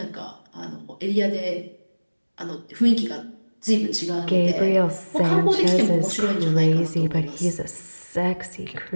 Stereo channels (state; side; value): inverted; both; correlation -1.00